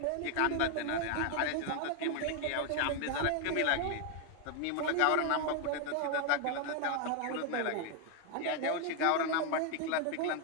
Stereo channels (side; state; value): both; different; correlation 0.00